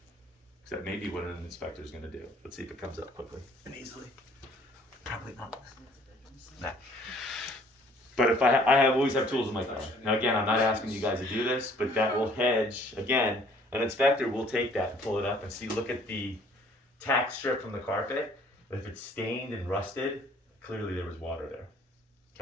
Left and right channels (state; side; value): normal; both; correlation 0.57